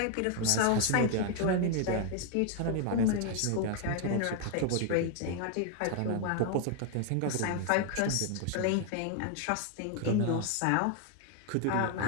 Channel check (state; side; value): different; both; correlation 0.00